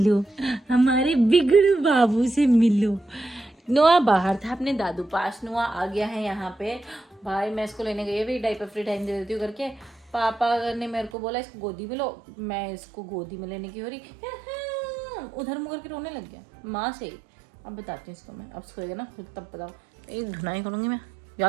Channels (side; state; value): left; drops out; at 11.1 s